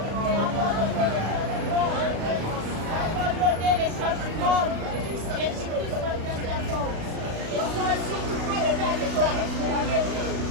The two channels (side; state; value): left; late; 36 ms